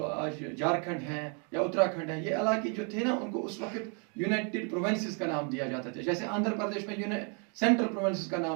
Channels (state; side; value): quieter; left; 37.8 dB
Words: आज झारखंड है या उत्तराखंड है, ये इलाके जो थे ना, उनको उस वक्त यूनाइटेड प्रोविंसेस का नाम दिया जाता था, जैसे आंध्र प्रदेश में सेंट्रल प्रोविंसेस का